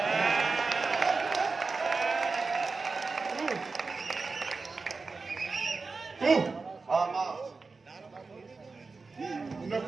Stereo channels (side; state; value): left; quieter; 4.2 dB